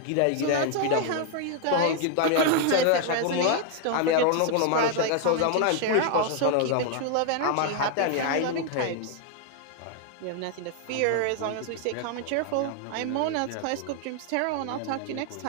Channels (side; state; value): both; different; correlation 0.00